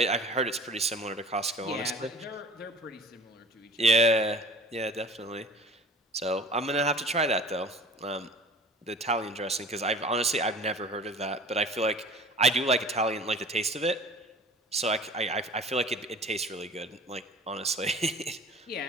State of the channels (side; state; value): both; normal; correlation 0.44